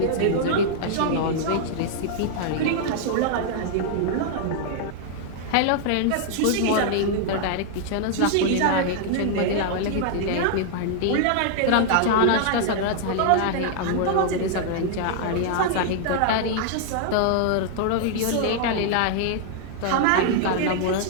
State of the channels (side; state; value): both; different; correlation -0.01